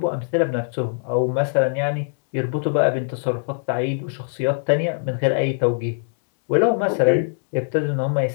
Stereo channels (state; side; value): silent; right; 64 dB below the other